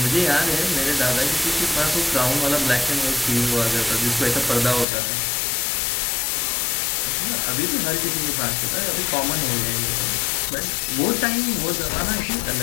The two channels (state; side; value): drops out; right; at 4.9 s